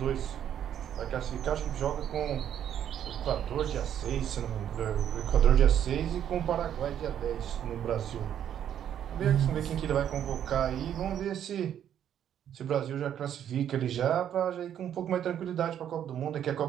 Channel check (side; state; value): left; quieter; 9.9 dB